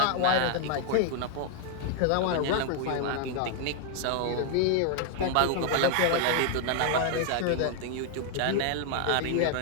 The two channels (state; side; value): different; both; correlation 0.00